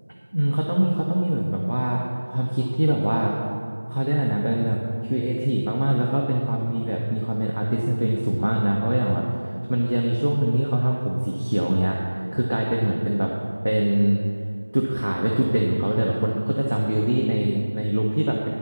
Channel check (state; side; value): inverted; both; correlation -1.00